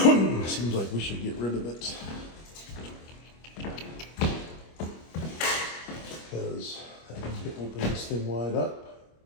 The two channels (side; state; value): right; late; 25 ms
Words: Seems like we should get rid of it because that means we open this thing wide up.